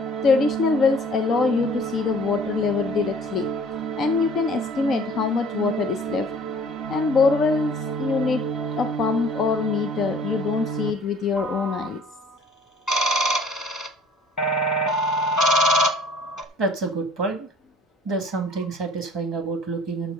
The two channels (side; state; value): both; normal; correlation 0.52